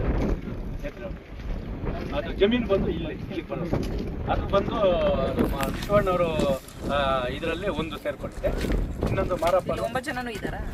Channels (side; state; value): both; identical; correlation 1.00